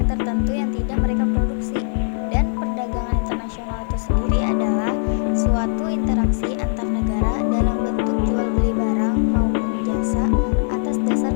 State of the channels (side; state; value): right; silent; 61 dB below the other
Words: tertentu yang tidak mereka produksi. Dan perdagangan internasional itu sendiri adalah suatu interaksi antar negara dalam bentuk jual beli barang maupun jasa atas dasar